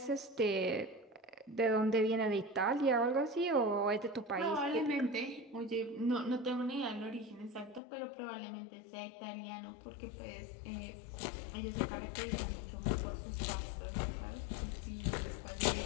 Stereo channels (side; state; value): right; drops out; at 7.8 s